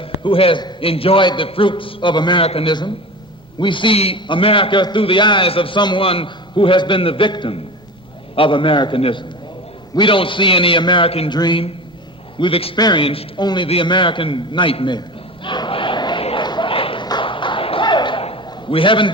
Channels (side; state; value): both; normal; correlation 0.31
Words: enjoyed the fruits of Americanism. We see America through the eyes of someone who has been the victim of Americanism. We don't see any American dream. We've experienced only the American nightmare. We haven't